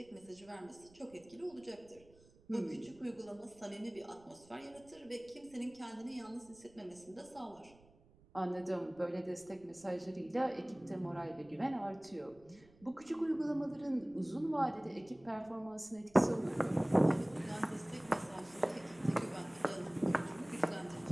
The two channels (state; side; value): noise; right; rumble, 26 dB below the sound